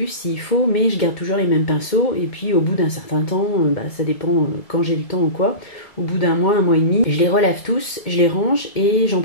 s'il faut, mais je garde toujours les mêmes pinceaux et puis au bout d'un certain temps, ça dépend quand j'ai le temps ou quoi, au bout d'un mois et demi, je les relave tous, je les range et j'en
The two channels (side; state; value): right; late; 2.2 ms